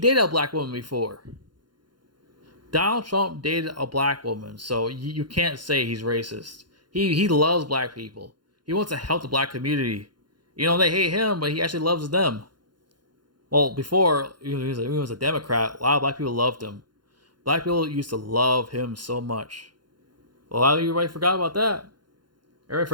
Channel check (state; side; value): late; left; 0.71 ms